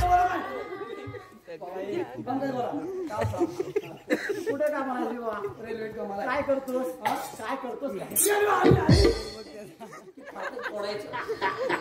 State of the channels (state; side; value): identical; both; correlation 1.00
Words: कुठे का म्हणाली बा. रेल्वे कामाला काय करतोस. काय करतोस